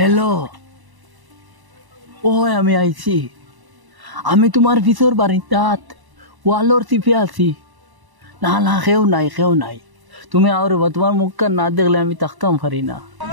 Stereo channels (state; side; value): late; left; 1.0 ms